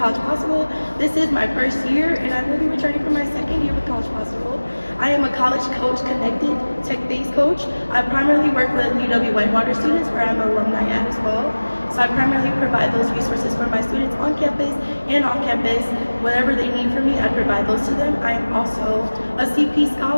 Possible. This is my 1st year, and I will be returning for my 2nd year with College Possible. I am a College Coach Connected tech-based coach. I primarily work with UW Whitewater students, where I'm an alumni at as well. So I primarily provide those resources for my students on campus and off campus. Whatever they need from me, I provide those to them. I am also a CP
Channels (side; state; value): both; inverted; correlation -1.00